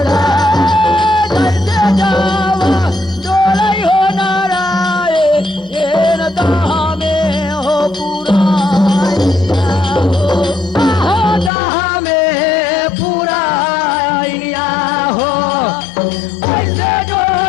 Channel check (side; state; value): right; drops out; at 11.5 s